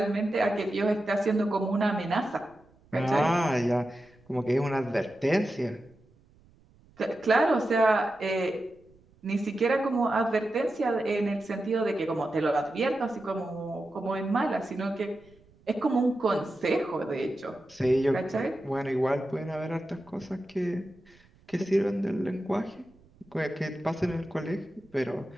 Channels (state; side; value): noise; right; rumble, 30 dB below the sound